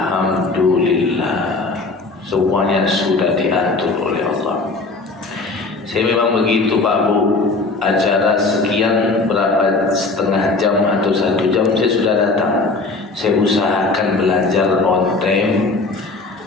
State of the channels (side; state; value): right; quieter; 3.6 dB